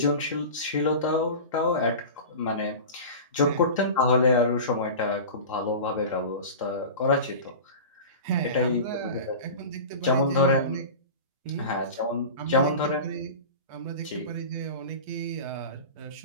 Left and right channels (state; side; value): inverted; both; correlation -0.32